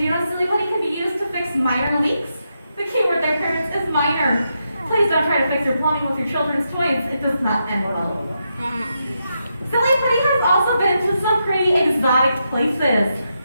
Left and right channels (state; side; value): inverted; both; correlation -0.84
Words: you know Silly Putty can be used to fix minor leaks? The key word there, parents, is minor. Please don't try to fix your plumbing with your children's toys. It does not end well. Silly Putty has also been to some pretty exotic places.